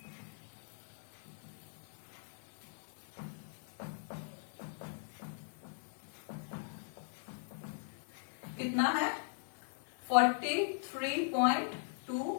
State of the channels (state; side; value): silent; right; digital silence